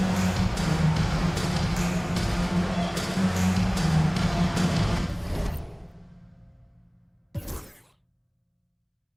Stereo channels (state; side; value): identical; both; correlation 1.00